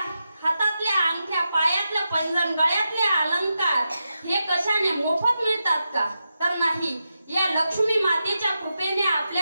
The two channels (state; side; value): inverted; both; correlation -0.88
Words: हातातल्या अंगठ्या, पायातलं पैंजण, गळ्यातले अलंकार हे कशाने मोफत मिळतात का? तर नाही, या लक्ष्मी मातेच्या कृपेने